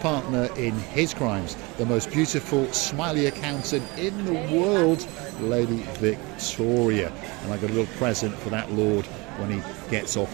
in his crimes, the most beautiful, smiley accountant in the world, Lady Victoria. And I got a little present for that lord when he gets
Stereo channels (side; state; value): left; quieter; 25.8 dB